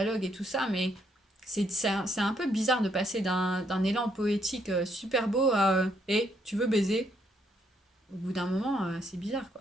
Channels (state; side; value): normal; both; correlation 0.73